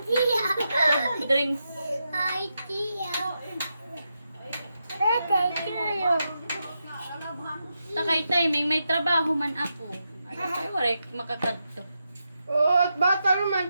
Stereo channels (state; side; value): inverted; both; correlation -0.86